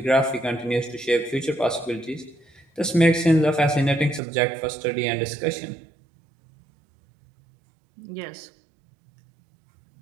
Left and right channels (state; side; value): drops out; left; at 4.2 s